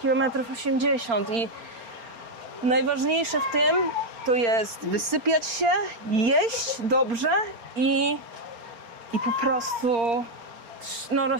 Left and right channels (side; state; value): left; late; 4.3 ms